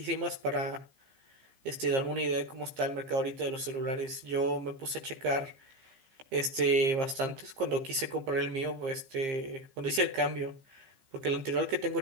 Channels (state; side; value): late; left; 15 ms